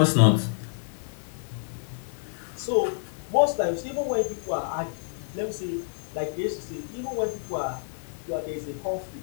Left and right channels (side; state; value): right; silent; 59 dB below the other